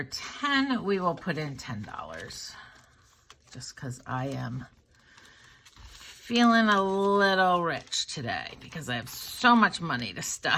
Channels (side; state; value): both; identical; correlation 1.00